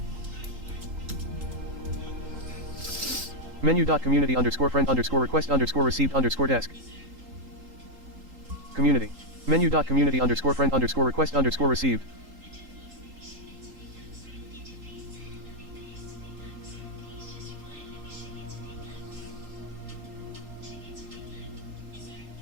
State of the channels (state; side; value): late; left; 3.8 ms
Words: Menu.community underscore friend underscore request underscore received underscore desk. Community. Menu.community underscore friend underscore request underscore received.